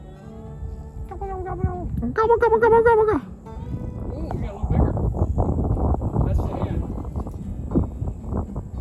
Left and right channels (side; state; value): both; identical; correlation 1.00